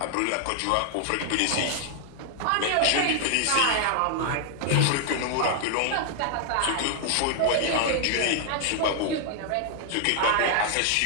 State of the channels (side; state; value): both; different; correlation 0.00